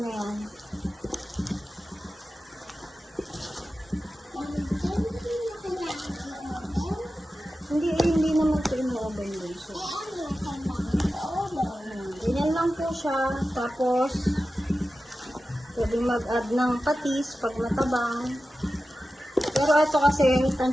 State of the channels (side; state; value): both; normal; correlation 0.93